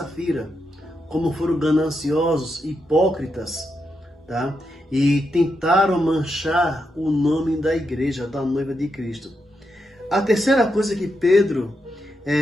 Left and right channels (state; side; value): normal; both; correlation 0.84